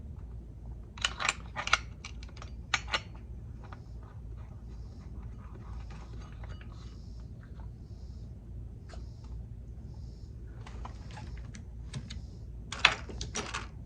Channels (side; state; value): both; identical; correlation 1.00